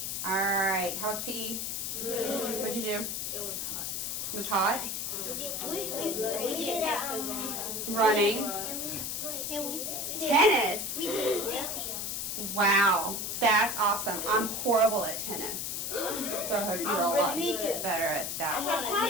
All right. How was PE? Good. What'd you do? It was hot. It was hot? We did Running. Tennis. Wow. That's awesome. I'm horrible at tennis. So I hope you're a lot better at that.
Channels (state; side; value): noise; left; hiss, 3 dB below the sound